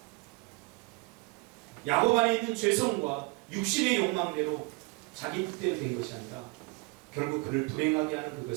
야곱 안에 있는 죄성과 육신의 욕망대로 자기 뜻대로 된 것이 아니라 결국 그를 불행하게 하는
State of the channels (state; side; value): quieter; left; 26.9 dB